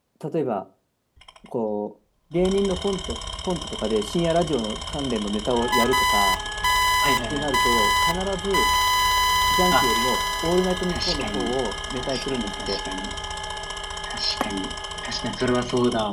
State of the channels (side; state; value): both; identical; correlation 1.00